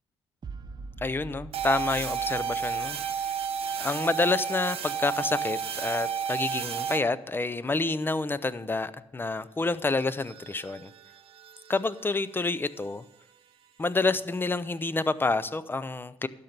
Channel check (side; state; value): both; normal; correlation 0.61